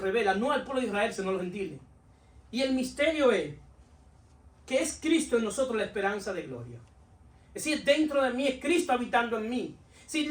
no al pueblo de Israel, sino a los gentiles. Y el misterio es que es Cristo en nosotros la esperanza de gloria. Es decir, dentro de mí es Cristo habitando en mí. Si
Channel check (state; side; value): identical; both; correlation 1.00